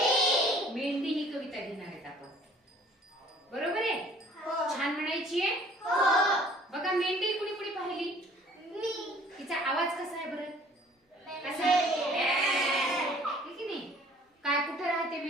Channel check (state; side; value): normal; both; correlation 0.54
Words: मेंढी ही कविता घेणार आहेत आपण. बरोबर आहे? हो. छान म्हणायची आहे. हो. बघा मेंढी कुणी कुणी पाहिली? मी. तिचा आवाज कसा आहे बरं? कसा आहे की नाही? काय कुठे राहते